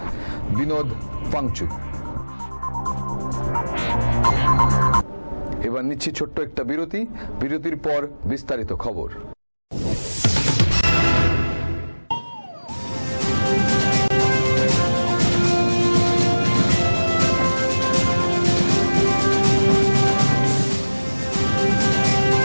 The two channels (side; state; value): both; inverted; correlation -1.00